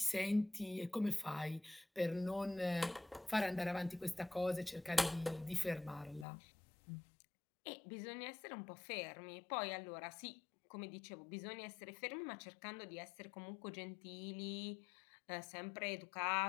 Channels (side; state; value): right; drops out; at 6.2 s